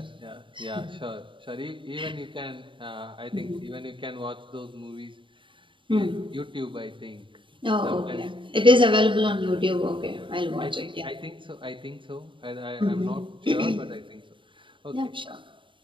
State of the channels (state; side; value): late; left; 0.24 ms